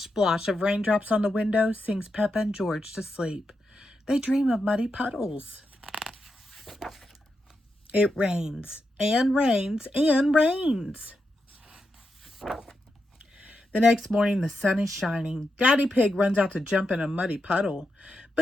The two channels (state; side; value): normal; both; correlation 0.86